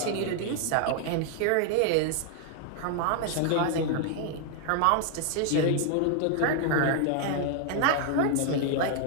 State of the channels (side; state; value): both; different; correlation 0.00